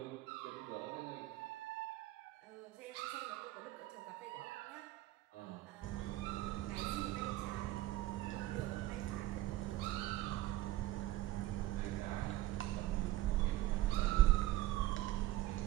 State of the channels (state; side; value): quieter; left; 15.6 dB